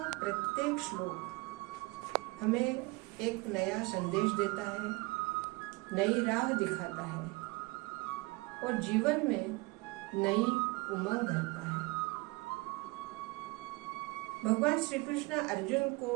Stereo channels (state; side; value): quieter; left; 24.8 dB